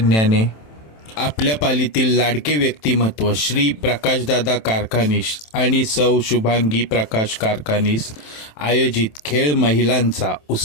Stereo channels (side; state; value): right; late; 27 ms